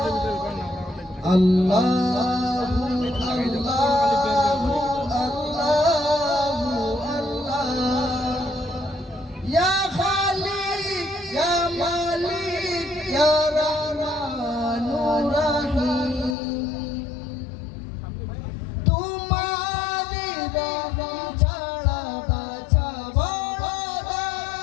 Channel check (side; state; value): right; drops out; at 16.4 s